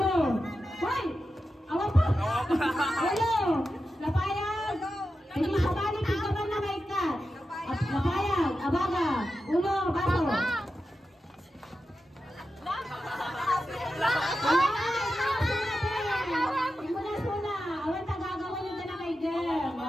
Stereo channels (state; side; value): normal; both; correlation 0.91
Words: Hoy! Awan pa! Uno. Lapayag. Hindi sa bali, tigaman na may kat. Lapayag. Abaga. Uno. Baso.